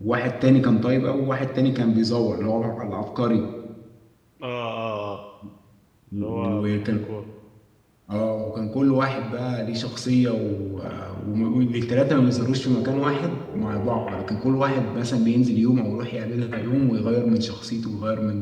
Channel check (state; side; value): identical; both; correlation 1.00